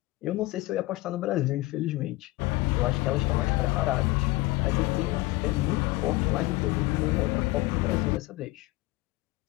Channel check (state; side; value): quieter; right; 19.8 dB